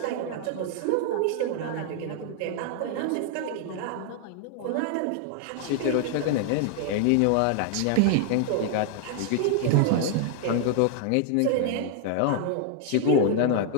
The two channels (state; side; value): different; both; correlation 0.00